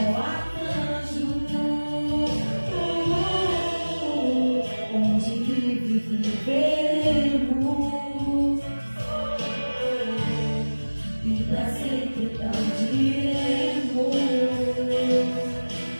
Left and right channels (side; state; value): both; inverted; correlation -1.00